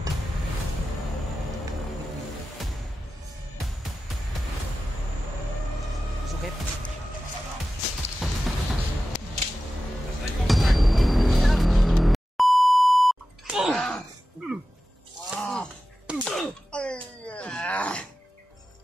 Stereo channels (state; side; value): normal; both; correlation 0.93